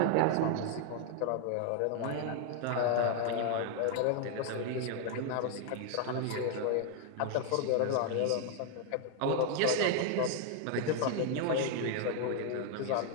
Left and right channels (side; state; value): both; different; correlation 0.00